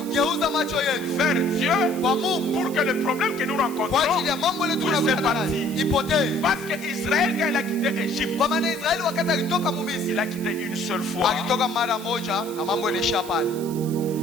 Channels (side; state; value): right; noise; hiss, 16 dB below the sound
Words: macho yetu vers Dieu kwa Mungu pour que le problème que nous kwa rencontrons, ajili ya mambo yetu Puisse tunakutana nayo partir. ipotee. parce que Israël, quand il a quitté Égypte, Kwa maana Israeli wakati alitoka Misri, il a quitté une seule fois. alitoka mara moja na mambo yanaisha pale.